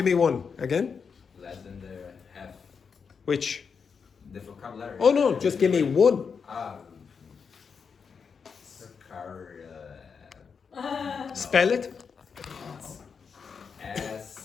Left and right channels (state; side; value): quieter; right; 6.0 dB